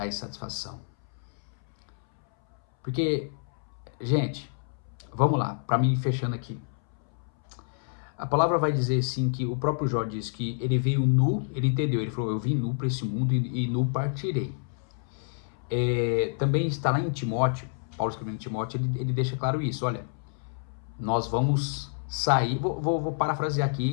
insatisfação. Porque, gente, vamos lá, para mim fechando aqui. A palavra vai dizer assim que o próprio Jó diz que ele veio nu, ele entendeu, ele falou, eu vim nu para esse mundo e nu partirei. Também está lá em Timóteo, Paulo escrevendo em Timóteo, ele deixa claro isso, olha, nós vamos sair, vou parafrasear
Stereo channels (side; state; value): right; silent; 59 dB below the other